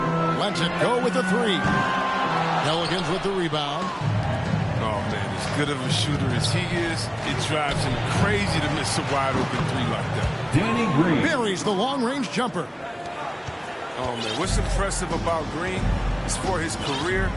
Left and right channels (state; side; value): identical; both; correlation 1.00